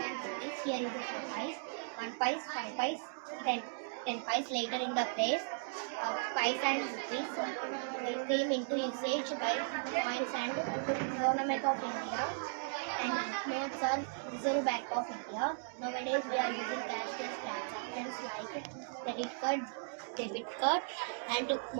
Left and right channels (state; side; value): silent; left; digital silence